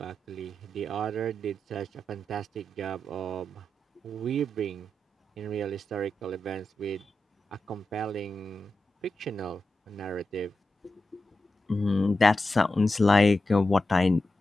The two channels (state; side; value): normal; both; correlation 0.90